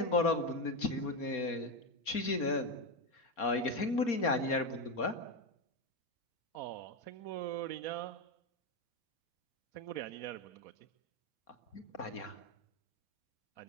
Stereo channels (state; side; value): late; right; 4.3 ms